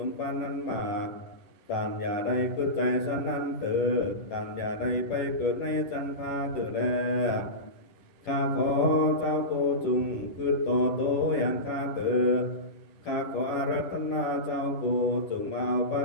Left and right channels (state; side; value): late; right; 11 ms